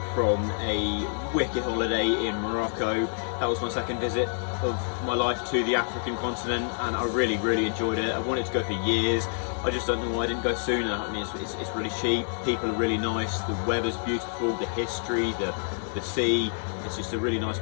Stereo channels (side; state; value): right; silent; digital silence